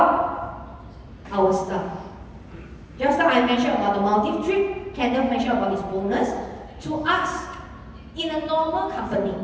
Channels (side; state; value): both; identical; correlation 1.00